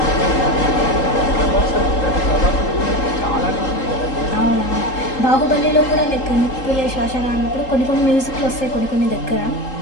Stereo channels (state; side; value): late; right; 3.8 ms